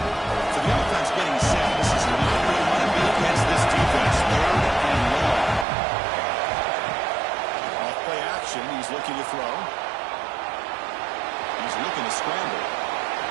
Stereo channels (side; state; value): left; drops out; at 5.7 s